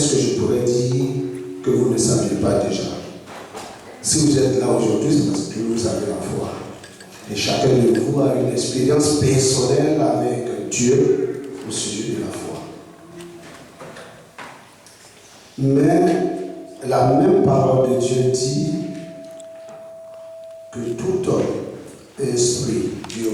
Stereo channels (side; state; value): both; identical; correlation 1.00